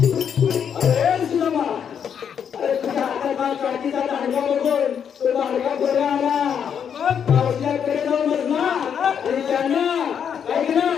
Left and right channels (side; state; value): right; quieter; 7.9 dB